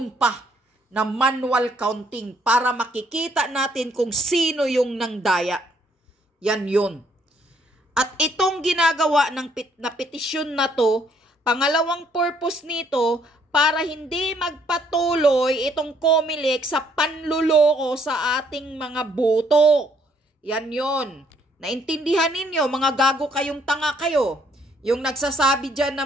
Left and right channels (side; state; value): both; normal; correlation 0.67